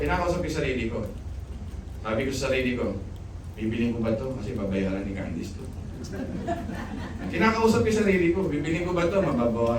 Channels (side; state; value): both; identical; correlation 1.00